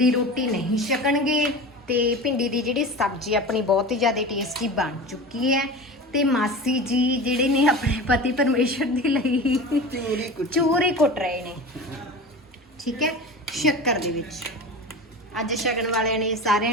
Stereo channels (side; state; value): both; normal; correlation 0.32